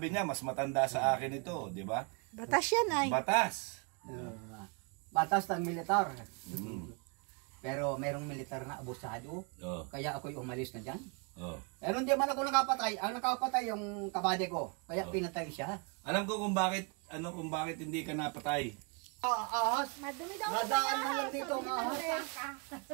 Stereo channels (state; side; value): quieter; left; 34.9 dB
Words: niya, mas matanda sa akin ito, di ba? Batas yan ay. Batas. Batas ng militar. Mm. Pero merong militar na abusado. Oh, Kaya ako'y umalis na dyan. oh. Pero hindi man ako nakapatay. Ang nakapatay yung kabade ko. Kaya pinatay siya. Alam ko kung bakit hindi ka napatay. Ahas. Madumi daw Nadaan man lang dito ang ahas.